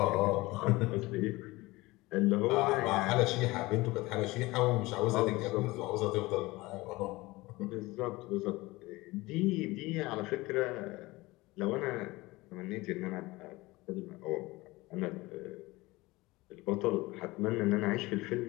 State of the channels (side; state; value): right; quieter; 21.0 dB